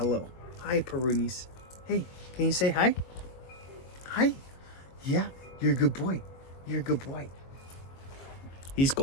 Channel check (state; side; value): late; right; 22 ms